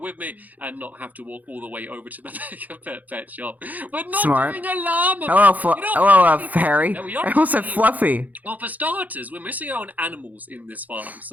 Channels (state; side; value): late; left; 0.080 ms